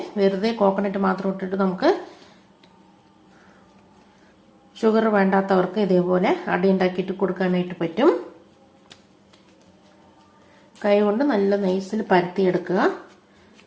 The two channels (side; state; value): both; identical; correlation 1.00